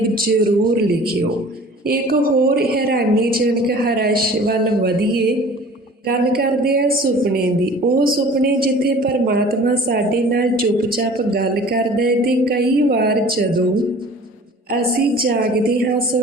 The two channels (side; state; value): both; normal; correlation 0.46